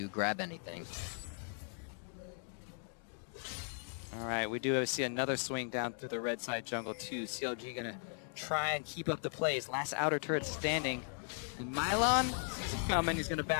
grab anything. All right, we do see another swing down through the red side jungle too. CLG gonna try and keep up the plays. Last outer turret standing. And paiN sees it coming. He's gonna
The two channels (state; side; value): silent; right; 53 dB below the other